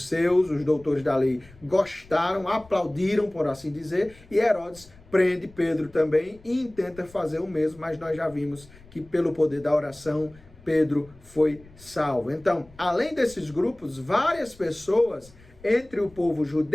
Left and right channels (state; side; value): noise; left; rumble, 24 dB below the sound